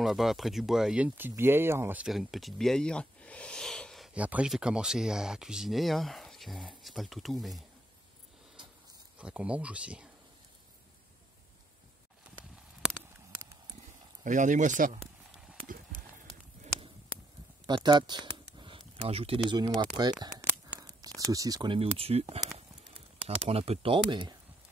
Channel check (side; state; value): both; normal; correlation 0.75